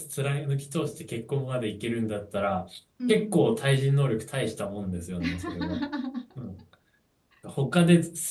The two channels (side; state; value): both; identical; correlation 1.00